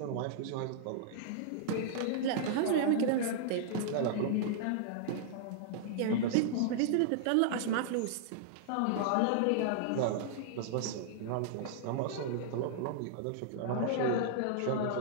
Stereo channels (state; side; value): different; both; correlation -0.01